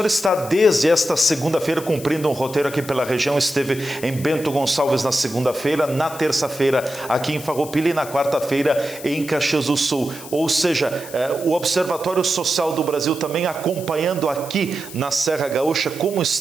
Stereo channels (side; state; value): left; noise; hiss, 15 dB below the sound